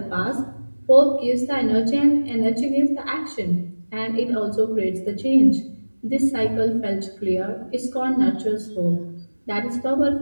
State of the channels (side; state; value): both; inverted; correlation -1.00